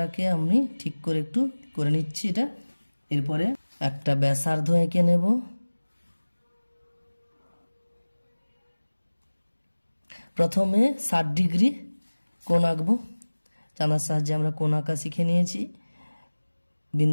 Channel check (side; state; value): both; inverted; correlation -1.00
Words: আমি ঠিক করে একটু করে নিচ্ছি এটা। এরপরে একটা ব্যাসার্ধ এঁকে নেব। প্রথমে 60 ডিগ্রি কোণ আঁকবো, চাঁদার সাহায্যে আমরা কোণ আঁকা শিখে নিয়েছি।